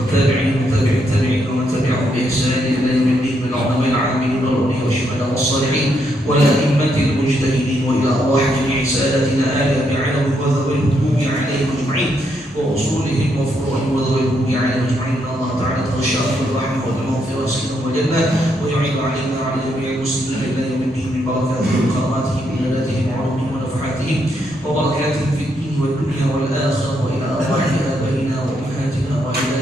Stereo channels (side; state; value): both; normal; correlation 0.77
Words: وتابع التابعين ومن تبعهم بإحسان إلى يوم الدين من العلماء العاملين والأولياء والشهداء والصالحين والأئمة المجتهدين وإلى أرواح جميع ساداتنا آل أبي علوي وذوي الهدوء عليهم أجمعين وأصولهم وفروعهم وذوي الهدوء عليهم أجمعين إن الله تعالى تغشاهم بالرحمة والمغفرة والسلام والجنة ويعين علينا وعلى جميع المسلمين إلى يوم الدين من بركاتهم وكراماتهم وعباداتهم وعلومهم ونفحاتهم وبركاتهم في الدين والدنيا والآخرة وإلى أرواح آبائنا وأمهاتنا